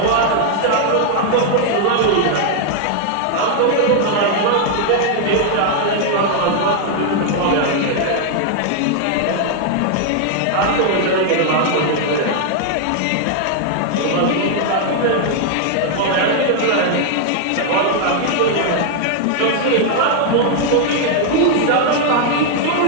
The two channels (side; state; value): both; different; correlation 0.00